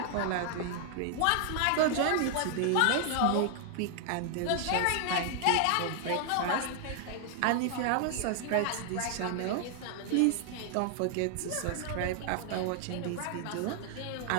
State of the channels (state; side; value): different; both; correlation 0.00